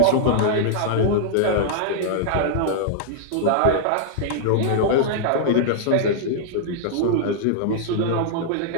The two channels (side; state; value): both; different; correlation -0.01